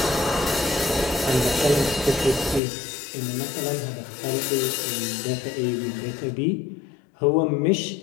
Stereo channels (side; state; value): right; drops out; at 2.6 s